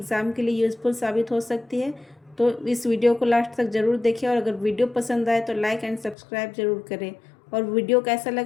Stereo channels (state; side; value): drops out; right; at 6.2 s